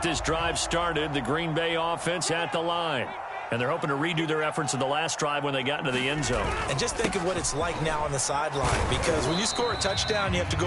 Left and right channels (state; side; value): identical; both; correlation 1.00